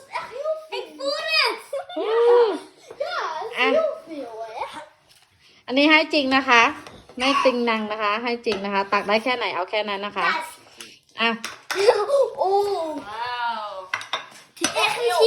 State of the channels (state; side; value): identical; both; correlation 1.00